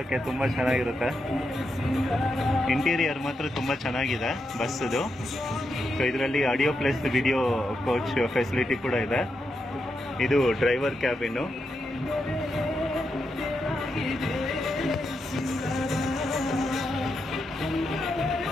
ತುಂಬ ಚೆನ್ನಾಗಿರುತ್ತೆ. ಇಂಟೀರಿಯರ್ ಮಾತ್ರ ತುಂಬ ಚೆನ್ನಾಗಿದೆ ಬಸ್ಸದು. ಸೊ ಇದರಲ್ಲಿ audio plus video coach facility ಕೂಡ ಇದೆ. ಇದು driver cabin.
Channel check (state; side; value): normal; both; correlation 0.84